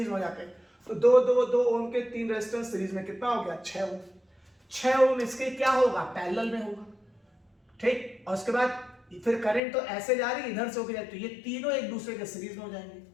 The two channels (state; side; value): drops out; right; at 9.6 s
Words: में हो जाते हैं। तो 2 2 2 ओम के 3 रेजिस्टेंस सीरीज में कितना हो गया, 6 ओम। 6 ओम इसके क्या होगा, पैरेलल में होगा। ठीक, और उसके बाद फिर करंट तो ऐसे जा रही है, इधर से होकर जाए, तो ये तीनों एक दूसरे के सीरीज में हो जाएंगे।